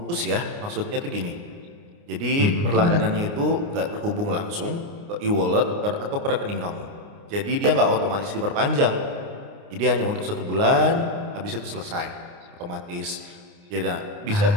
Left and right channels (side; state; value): left; late; 29 ms